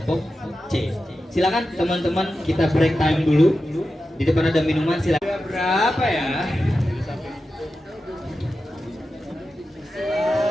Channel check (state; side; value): normal; both; correlation 0.92